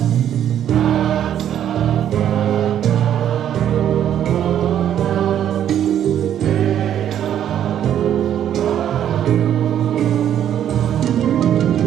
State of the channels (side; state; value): left; quieter; 10.3 dB